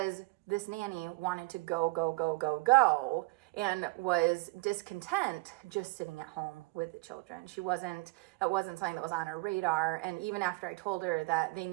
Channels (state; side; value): quieter; left; 26.6 dB